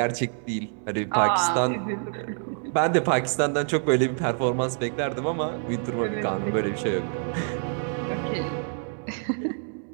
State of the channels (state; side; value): silent; left; 56 dB below the other